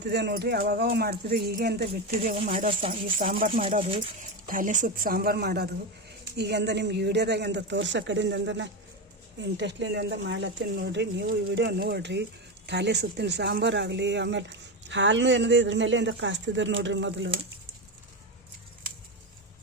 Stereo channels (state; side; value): normal; both; correlation 0.15